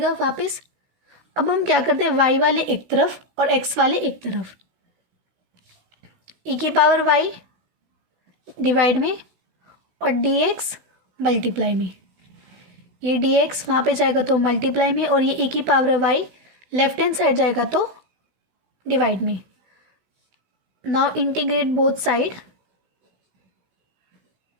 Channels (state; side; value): late; left; 16 ms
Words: वापस। अब हम क्या करते हैं, y वाले एक तरफ और x वाले एक तरफ, e की पावर y डिवाइड में और dx मल्टीप्लाई में। ये dx वहाँ पे जाएगा तो मल्टीप्लाई में, और ये e की power y left hand side जाएगा तो डिवाइड में। Now integrate both side,